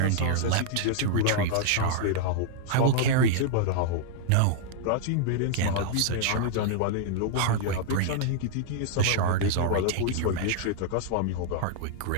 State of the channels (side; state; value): both; different; correlation -0.01